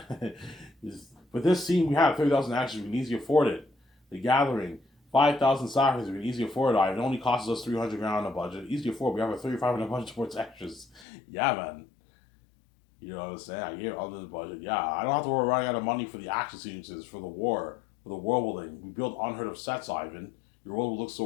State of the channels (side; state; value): right; drops out; at 11.1 s